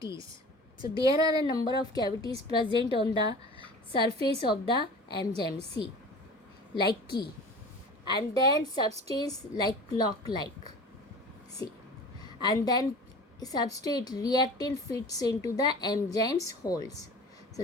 So there are a number of cavities present on the surface of the enzyme, see, like key, and then substance like clock like, see, and then substrate reactant fits into the enzyme's holes.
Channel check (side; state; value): both; normal; correlation 0.39